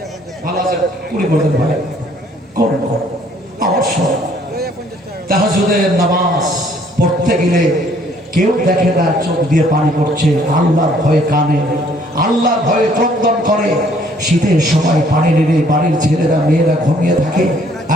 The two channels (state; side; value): normal; both; correlation 0.62